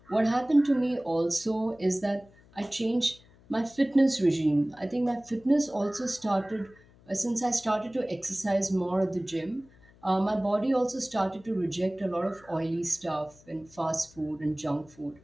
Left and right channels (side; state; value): left; noise; hum, 27 dB below the sound